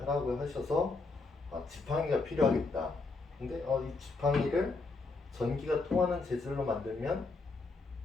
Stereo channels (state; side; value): quieter; right; 3.7 dB